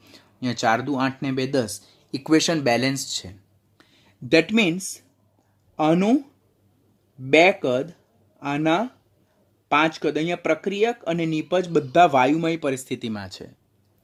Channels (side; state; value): both; identical; correlation 1.00